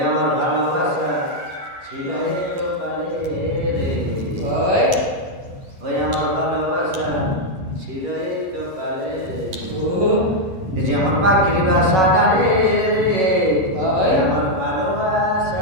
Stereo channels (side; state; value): left; late; 11 ms